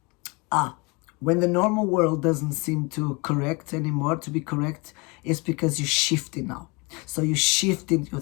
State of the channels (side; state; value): right; quieter; 28.0 dB